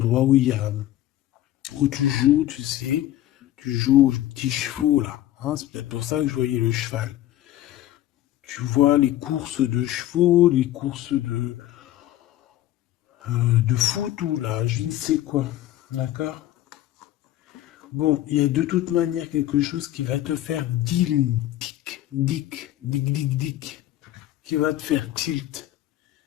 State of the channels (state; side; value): quieter; right; 13.9 dB